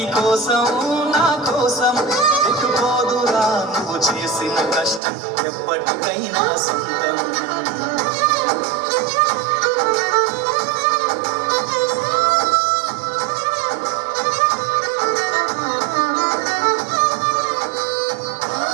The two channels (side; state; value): left; drops out; at 5.0 s